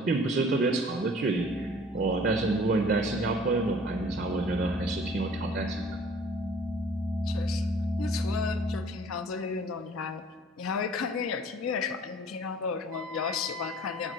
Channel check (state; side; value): normal; both; correlation 0.51